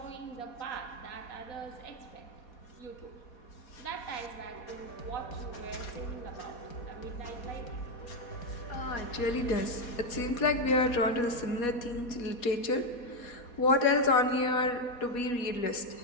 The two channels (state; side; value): late; right; 4.2 ms